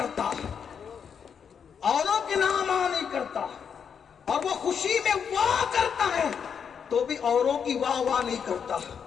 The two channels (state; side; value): quieter; right; 7.2 dB